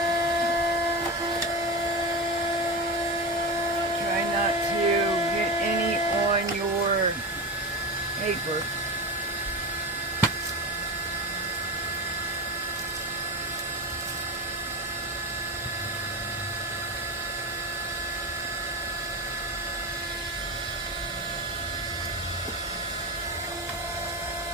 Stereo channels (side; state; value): both; normal; correlation 0.21